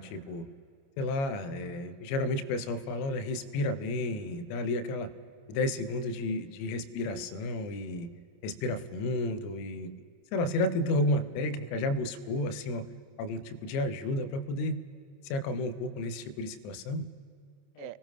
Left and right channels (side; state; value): right; late; 29 ms